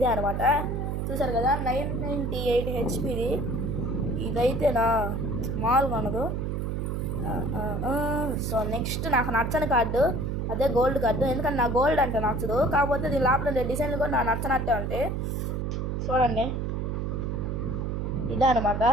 అనమాట, చూసారు కదా, 998 హెచ్పిది. ఇదైతే నా మామూలుగా ఉండదు. సో నెక్స్ట్ నాకు నచ్చని కార్డు అదే గోల్డ్ కార్డు, ఎందుకంటే నా గోల్డ్ అంటే నచ్చదు, కాకపోతే దీని లోపల డిజైన్లు కూడా నాకు నచ్చనట్టే ఉంటాయి. చూడండి ఇదే అనమాట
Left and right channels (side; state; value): right; noise; hum, 1 dB below the sound